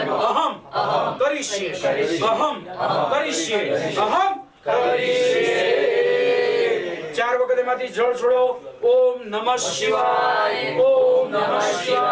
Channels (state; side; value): identical; both; correlation 1.00